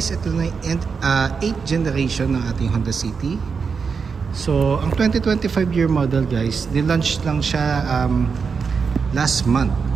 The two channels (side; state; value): left; quieter; 5.6 dB